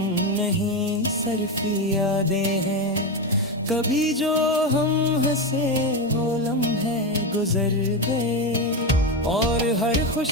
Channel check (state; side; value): normal; both; correlation 0.13